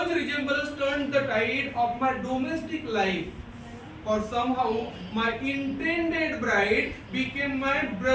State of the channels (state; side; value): identical; both; correlation 1.00